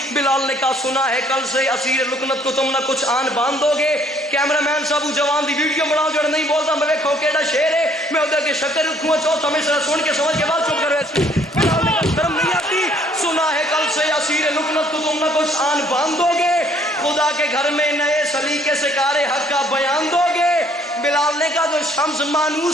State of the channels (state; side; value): normal; both; correlation 0.62